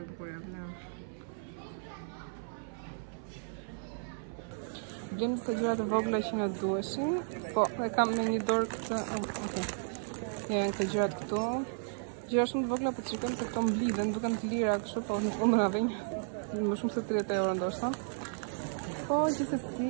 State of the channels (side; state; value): left; silent; 55 dB below the other